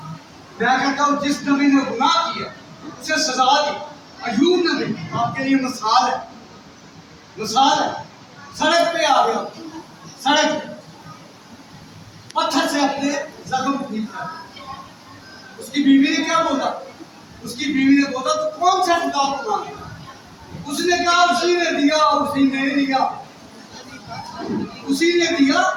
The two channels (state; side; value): identical; both; correlation 1.00